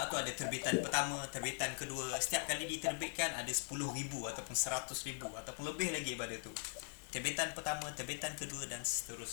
tu ada terbitan pertama, terbitan kedua. Setiap kali diterbitkan ada 10,000 ataupun 100,000 ataupun lebih lagi daripada tu. Terbitan pertama, terbitan kedua dan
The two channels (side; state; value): right; silent; 50 dB below the other